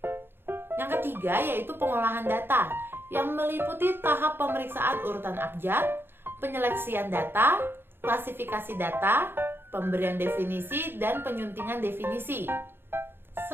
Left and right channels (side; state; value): left; late; 0.10 ms